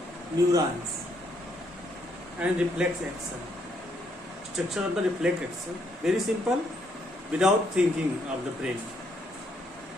neurons and reflex action. Structure of the reflex action. Very simple, without thinking of the brain.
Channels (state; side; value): normal; both; correlation 0.72